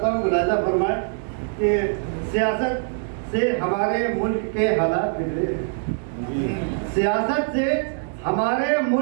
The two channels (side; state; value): left; silent; digital silence